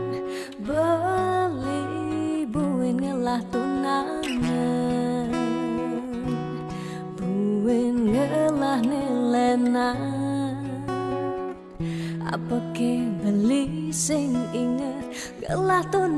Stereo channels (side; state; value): both; identical; correlation 1.00